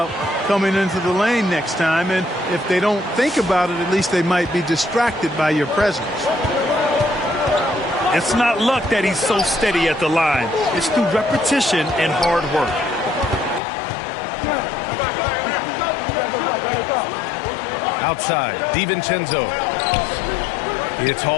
coming into the lane next time. And if they don't think about it, at least they might be distracted by your presence. It's not luck that he's so steady at the line. It's through repetition and hard work. Outside, DiVincenzo. It's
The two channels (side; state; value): right; drops out; at 13.6 s